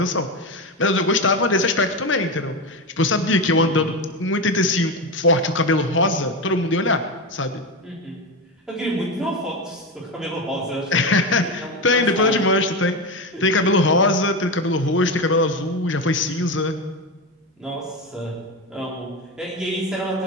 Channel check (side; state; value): both; normal; correlation 0.17